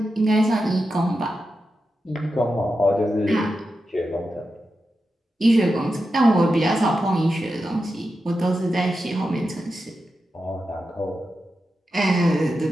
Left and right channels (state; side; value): normal; both; correlation 0.90